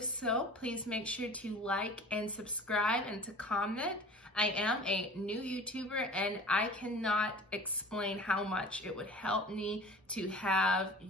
so, please make sure to like and subscribe and to comment. I am a new YouTuber and I cannot explain how much it would help me to have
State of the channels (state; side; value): normal; both; correlation 0.42